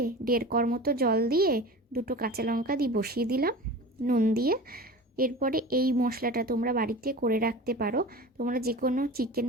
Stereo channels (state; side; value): normal; both; correlation 0.34